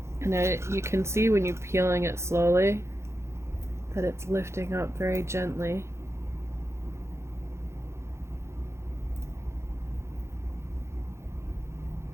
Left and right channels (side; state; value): left; late; 0.13 ms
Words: And you can see when you're peeling it slowly that it's lifting up very gently.